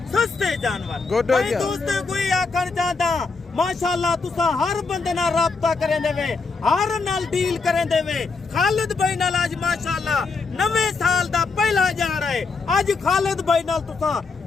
सस्ते जानवर। भाई दोस्तों कोई आखर चाहता माशाल्लाह तुसा हर बंदे नाल राब्ता करें देवे, हर नाल डील करें देवे। खालिद भाई नाल आज माशाल्लाह नवे साल दा पहला जा रहा है। आज खालिद भाई नाल तुसा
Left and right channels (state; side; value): quieter; right; 4.4 dB